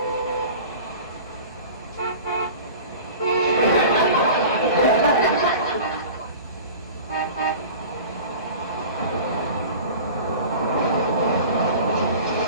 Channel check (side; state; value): both; inverted; correlation -0.39